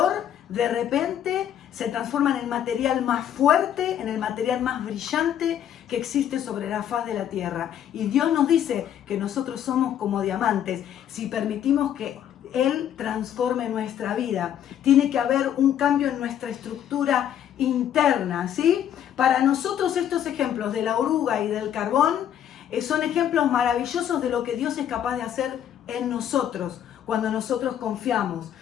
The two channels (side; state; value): right; quieter; 10.1 dB